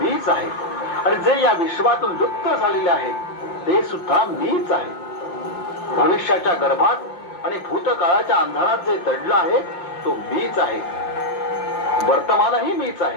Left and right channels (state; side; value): late; right; 5.9 ms